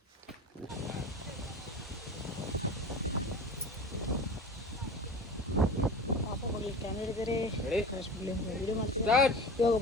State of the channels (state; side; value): normal; both; correlation 0.34